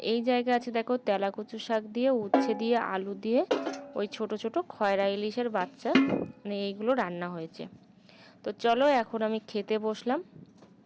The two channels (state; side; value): identical; both; correlation 1.00